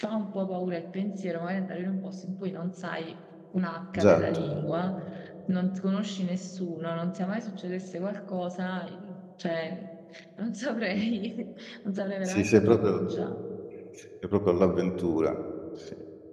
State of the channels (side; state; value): both; identical; correlation 1.00